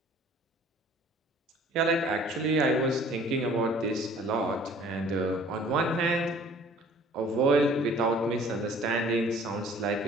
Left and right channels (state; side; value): normal; both; correlation 0.52